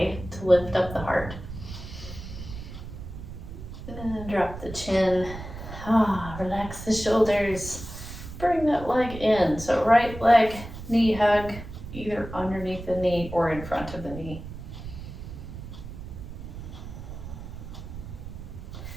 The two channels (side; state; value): right; noise; rumble, 11 dB below the sound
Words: to lift up the heart. And drop the chin. Relax the shoulders. Bring that leg in. So right leg, knee hug, either underneath the knee or in front of the knee.